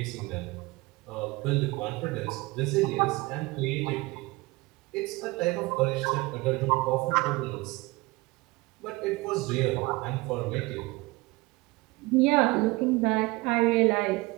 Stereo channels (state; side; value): quieter; left; 22.7 dB